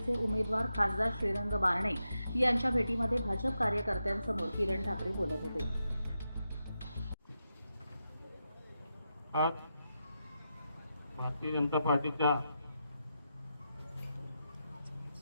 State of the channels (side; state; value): both; inverted; correlation -0.87